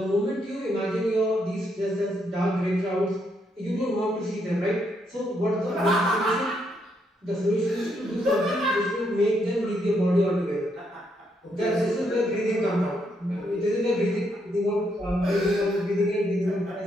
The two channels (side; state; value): both; normal; correlation 0.76